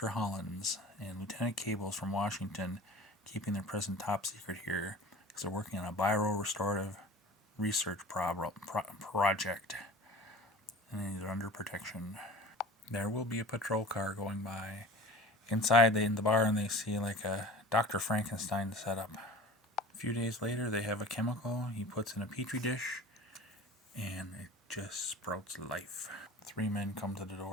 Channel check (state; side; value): normal; both; correlation 0.40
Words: Hollands and Lieutenant Cables from Washington, keeping their present top secret here because they're working on a bio-restorative research project, and they're under protection. There will be a patrol car going by. Inside in the barn they see like a Dr. Frankenstein setup. A few days later they have a chemical he puts in a petri dish and it just sprouts life. 3 men come to the